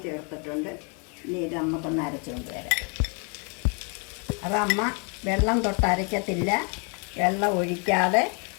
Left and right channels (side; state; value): right; quieter; 35.9 dB